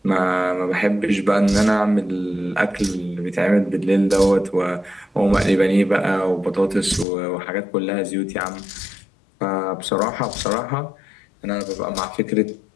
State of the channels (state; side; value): drops out; right; at 7.1 s